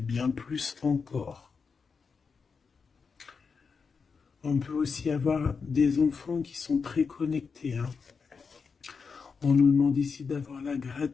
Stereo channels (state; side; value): quieter; right; 5.4 dB